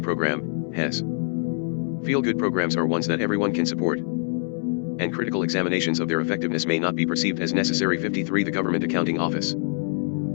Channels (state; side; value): silent; right; 62 dB below the other